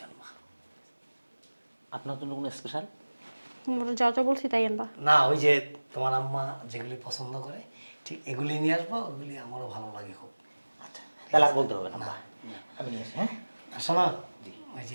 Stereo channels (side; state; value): both; inverted; correlation -1.00